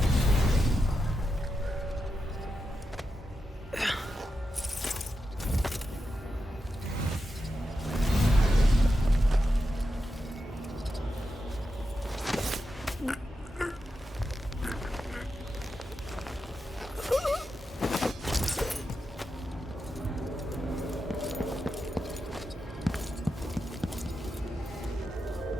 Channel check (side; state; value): both; normal; correlation 0.88